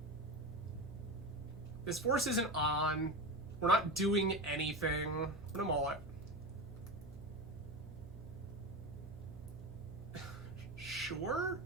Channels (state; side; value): noise; right; hum, 14 dB below the sound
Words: This force isn't on. We're not doing anything. What am I? Sure?